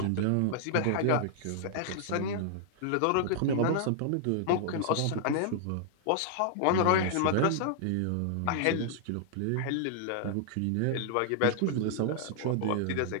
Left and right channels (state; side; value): different; both; correlation -0.01